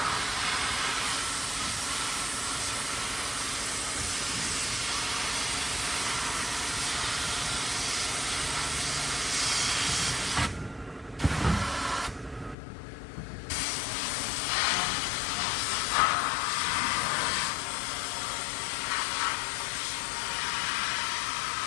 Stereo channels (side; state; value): right; drops out; at 12.6 s